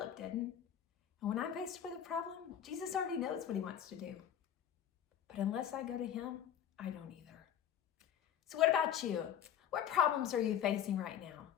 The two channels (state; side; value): quieter; right; 9.6 dB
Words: didn't. And when I'm faced with a problem, Jesus already knows what he wants to do. But unless I go to him, I don't either. So what about you? What problems are you facing right now?